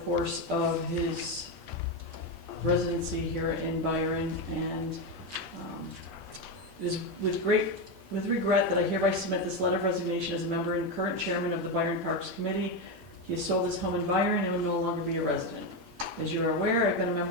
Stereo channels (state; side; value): normal; both; correlation 0.11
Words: of his residency here in Byron, and it is with regret that I hereby submit this letter of resignation as a member and current chairman of the Byron Parks Committee. He has sold his home in Byron and will no longer be a resident. As you are aware, I've been a